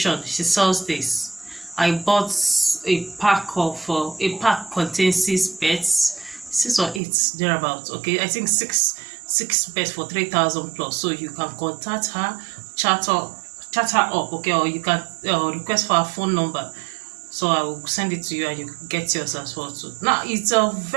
she sells this. I bought a pack contains 6 beds, 6 or 8 thereabouts, okay. I think six beds for 3,000 plus. So you can contact her, chat her up, okay, or you can request for her phone number, so I will send it to you and you get yours as well too. Now it's I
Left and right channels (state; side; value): drops out; left; at 7.0 s